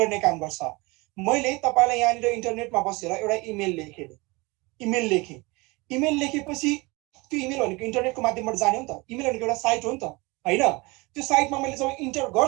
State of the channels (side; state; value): left; quieter; 24.9 dB